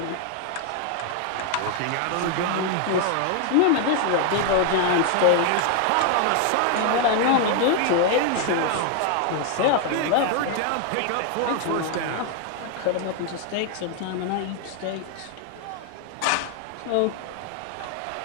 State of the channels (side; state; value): both; different; correlation 0.00